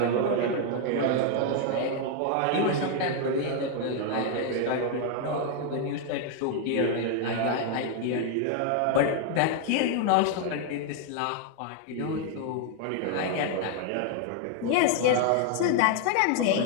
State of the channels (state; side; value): different; both; correlation 0.00